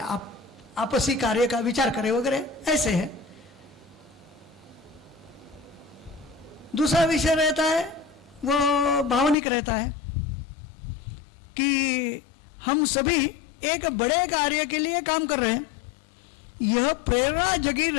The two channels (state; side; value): drops out; right; at 9.3 s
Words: आपसी कार्य का विचार करे वगैरह, ऐसे है। दूसरा विषय रहता है वो भावनिक रहता है कि हम सभी एक बड़े कार्य के लिए काम कर रहे हैं, यह प्रेरणा जगी